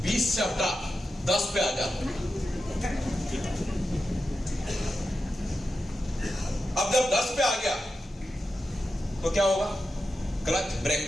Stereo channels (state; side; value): normal; both; correlation 0.90